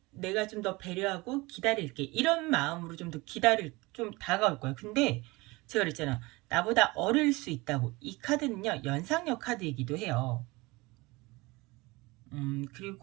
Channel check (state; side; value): quieter; left; 23.1 dB